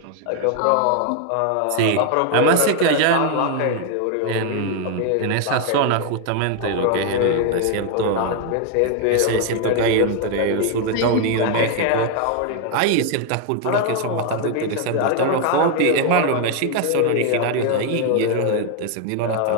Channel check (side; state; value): both; different; correlation 0.01